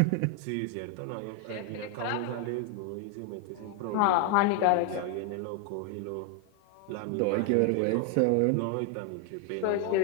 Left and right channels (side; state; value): both; different; correlation 0.00